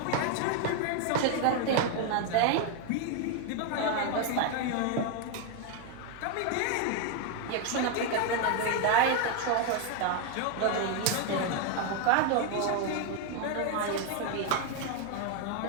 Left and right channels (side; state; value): both; different; correlation 0.01